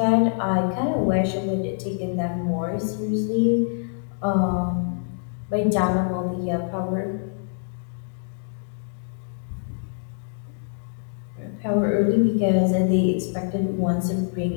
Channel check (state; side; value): silent; right; digital silence